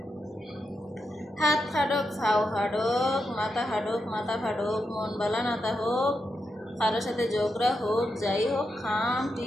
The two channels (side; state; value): both; normal; correlation 0.86